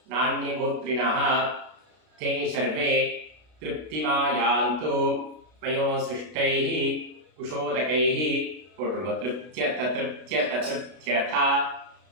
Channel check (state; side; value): late; left; 32 ms